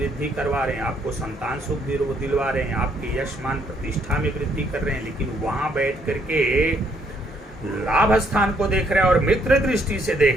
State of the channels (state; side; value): normal; both; correlation 0.69